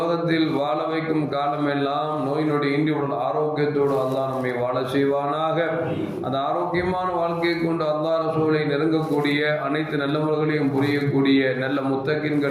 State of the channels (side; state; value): both; identical; correlation 1.00